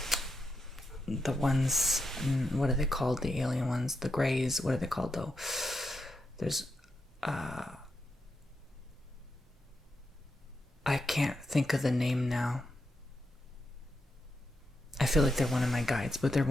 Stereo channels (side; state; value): both; normal; correlation 0.85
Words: the ones, what are they called? The alien ones, the Greys, what are they called though? There's, I can't think of the name now. I feel like they're one of my guides, but they're